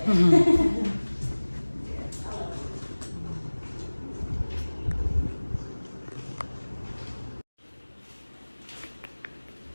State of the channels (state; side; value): inverted; both; correlation -1.00